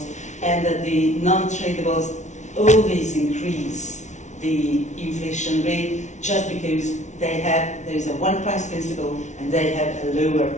and that the non-tradables always increase the inflation rate just because there is a one price principle and they have a lower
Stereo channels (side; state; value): right; late; 0.34 ms